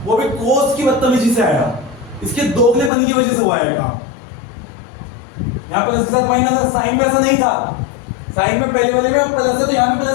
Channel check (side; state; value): right; drops out; at 2.9 s